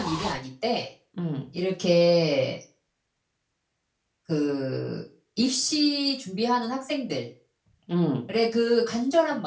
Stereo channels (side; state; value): both; identical; correlation 1.00